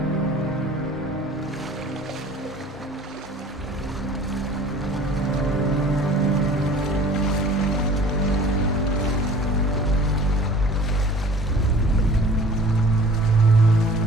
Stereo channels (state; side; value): normal; both; correlation 0.47